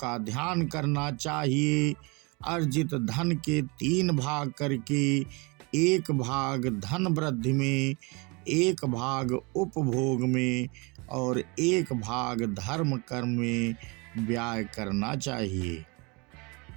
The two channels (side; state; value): left; quieter; 28.5 dB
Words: ध्यान करना चाहिए। अर्जित धन के 3 भाग करके 1 भाग धन वृद्धि में, 1 भाग उपभोग में और 1 भाग धर्म कर्म में व्यय करना चाहिए।